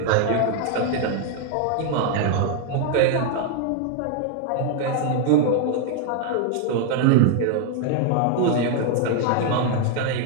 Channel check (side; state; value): both; different; correlation 0.00